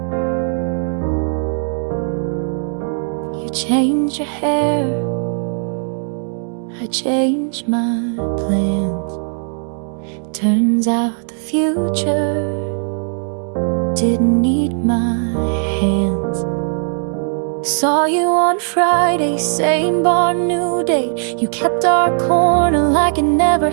You changed your hair, I changed my plans. Turns out the future didn't need my hands. Saw you on Friday, same bar, new date. You kept our corner like it never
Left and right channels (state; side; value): silent; left; 55 dB below the other